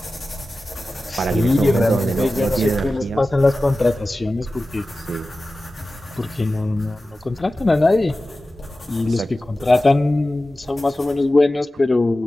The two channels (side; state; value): both; normal; correlation 0.95